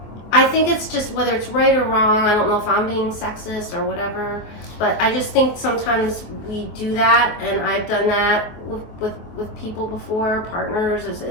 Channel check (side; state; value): right; late; 24 ms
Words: I think it's just whether it's right or wrong. I don't know if I'm being sexist or whatever, but I just think sometimes we do that, and I've done that with people before, partners,